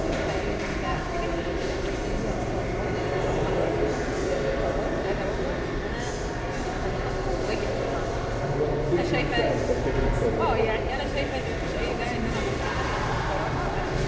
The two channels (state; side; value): identical; both; correlation 1.00